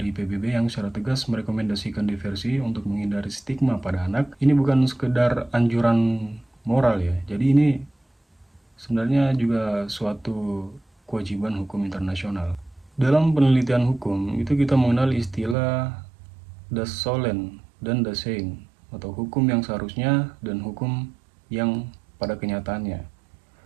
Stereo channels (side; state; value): left; drops out; at 15.6 s